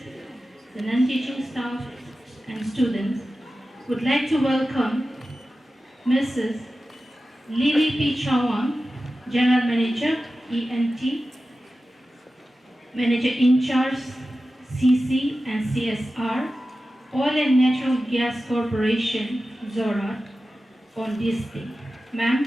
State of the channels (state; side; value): normal; both; correlation 0.94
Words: the non-teaching staff and students. Would like to welcome Mrs. Lily P. Chawang, General Manager, ENT, Manager in charge, CC and CSR, Oil and Natural Gas Corporation, Zorat, on this day. Ma'am,